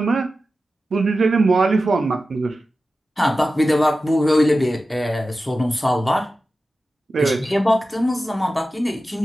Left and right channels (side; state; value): both; normal; correlation 0.93